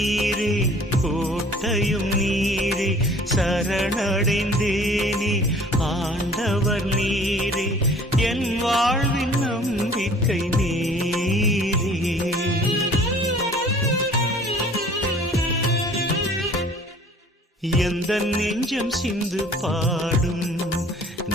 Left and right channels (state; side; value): normal; both; correlation 0.51